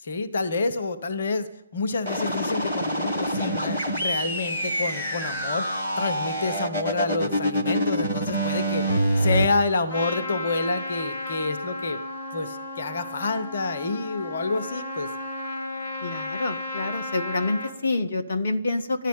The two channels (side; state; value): both; inverted; correlation -0.71